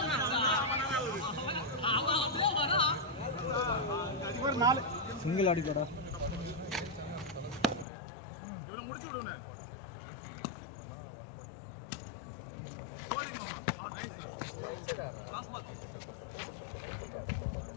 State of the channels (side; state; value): right; drops out; at 7.9 s